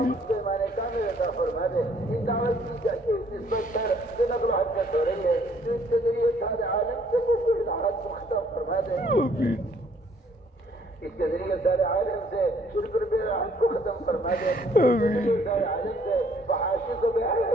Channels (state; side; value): normal; both; correlation 0.62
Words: کو ایمان کامل عطا فرما دے۔ اس دعوت کی نسبت پر جو نقل و حرکت ہو رہی ہے جو اس کے ذریعے سارے عالم سے کفر بدعات کو ختم فرما دے، اس کے ذریعے سارے عالم سے شرک و بدعات کو ختم فرما دے، اس کے ذریعے سارے عالم سے فحاشی کو بے